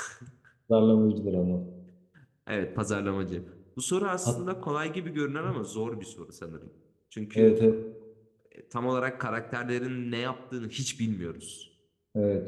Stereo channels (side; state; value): both; identical; correlation 1.00